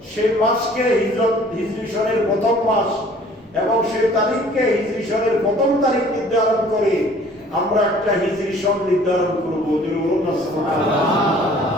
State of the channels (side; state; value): both; normal; correlation 0.53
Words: সেই মাসকে হিজরি সনের প্রথম মাস এবং সেই তারিখকে হিজরি সনের প্রথম তারিখ নির্ধারণ করে আমরা একটা হিজরি সন নির্ধারণ করব।